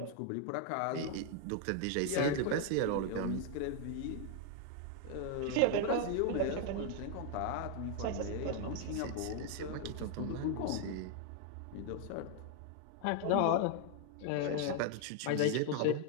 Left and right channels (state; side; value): different; both; correlation 0.00